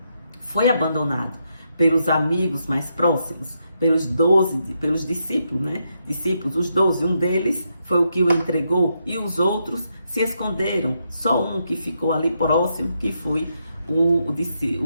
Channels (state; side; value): inverted; both; correlation -0.81